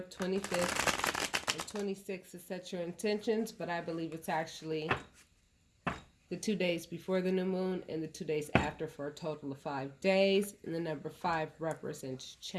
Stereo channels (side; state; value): both; identical; correlation 1.00